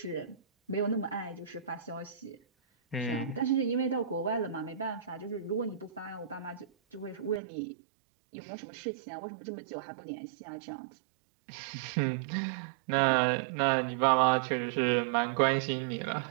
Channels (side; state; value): left; drops out; at 7.4 s